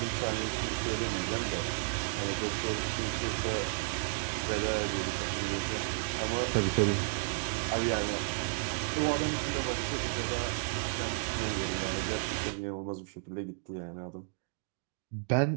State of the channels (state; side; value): silent; left; digital silence